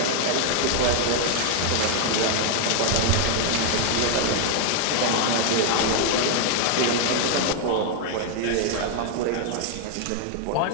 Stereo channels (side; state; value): both; different; correlation 0.00